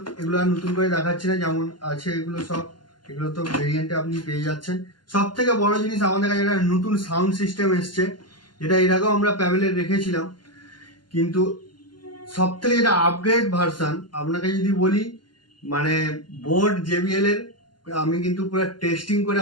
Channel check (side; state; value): right; late; 0.71 ms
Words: এগুলো আর নতুন করে দেখাচ্ছি না, যেমন আছে এগুলো সব, এগুলো তো ভেরিয়েন্টে আপনি পেয়ে যাচ্ছেন। সব থেকে বড় জিনিস আমাদের কাছে একটা নতুন সাউন্ড সিস্টেম এসছে, যেটা এর আগেও আমরা প্যাভেলে রেখেছিলাম, কিন্তু সব থেকে যেটা আপগ্রেড ভার্সান আপনাকে যদি বলি, মানে বোট জেবিএল এর, আমি কিন্তু পুরো টেস্টিং করে